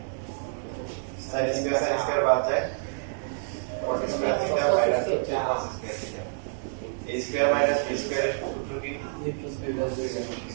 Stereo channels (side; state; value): left; silent; 57 dB below the other